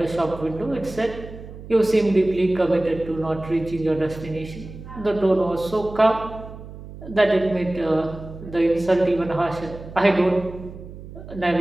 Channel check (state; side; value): noise; right; hum, 14 dB below the sound